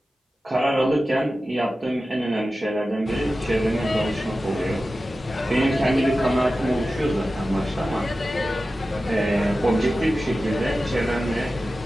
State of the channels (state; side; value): normal; both; correlation 0.94